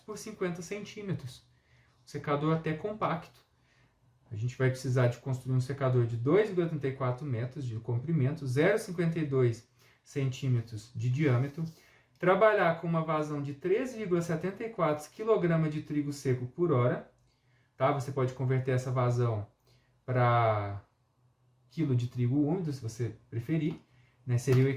50 centímetros. Um secador até compacto. A gente vai precisar de construir um secador de 2,34 metros de comprimento, 0,52 centímetros de diâmetro, trabalhar com uma vazão de 13,74 kg de trigo seco por hora. Tá? Você pode converter essa vazão para quilo de trigo úmido, se você preferir. Né? Seria o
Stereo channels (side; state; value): both; identical; correlation 1.00